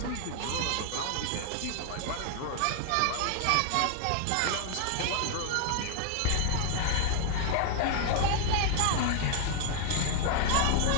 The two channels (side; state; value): both; different; correlation 0.00